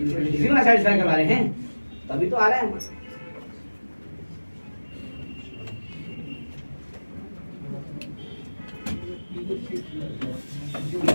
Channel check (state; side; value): inverted; both; correlation -1.00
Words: में सैटिस्फाई करवा रहे हैं, तभी तो आ रहा है हमारा। ये